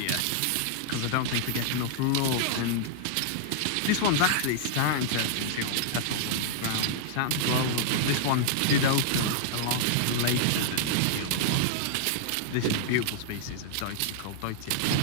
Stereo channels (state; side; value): different; both; correlation -0.01